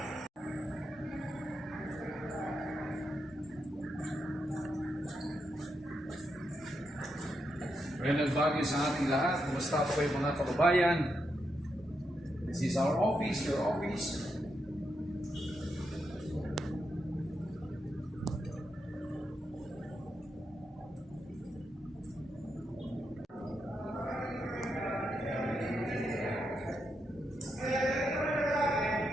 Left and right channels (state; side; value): normal; both; correlation 0.83